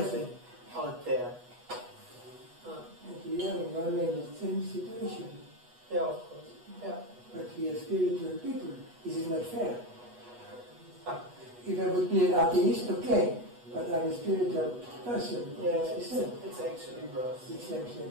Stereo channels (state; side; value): late; left; 8.2 ms